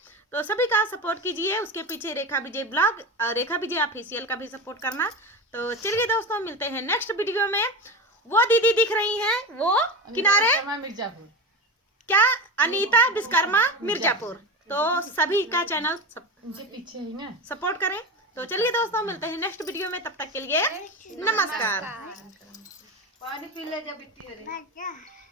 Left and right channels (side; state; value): both; normal; correlation 0.23